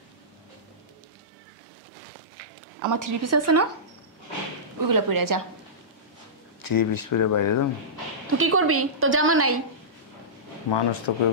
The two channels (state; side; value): normal; both; correlation -0.17